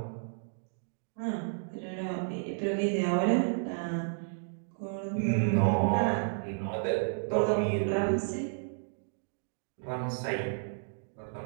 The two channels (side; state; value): left; silent; digital silence